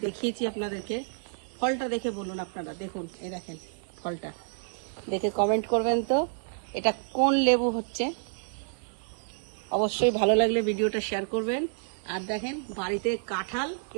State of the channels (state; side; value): silent; left; digital silence